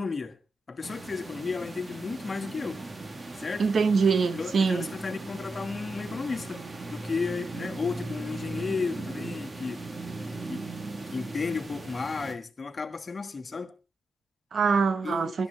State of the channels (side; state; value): both; normal; correlation 0.86